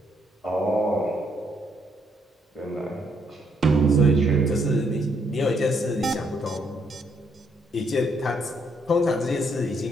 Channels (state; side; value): normal; both; correlation 0.72